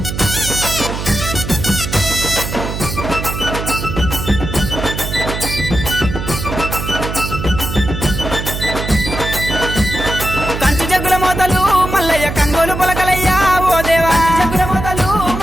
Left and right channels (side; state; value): right; noise; hum, 5 dB below the sound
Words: కంచు జగ్గుల మోతలు మల్లయ్య కంగోలు పొలకలయ్యా ఓ దేవా జగ్గుల మోతలు